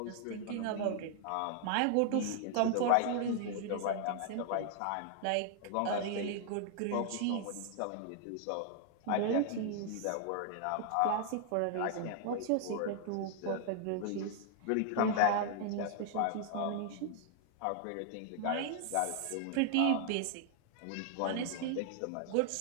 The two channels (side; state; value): both; different; correlation 0.00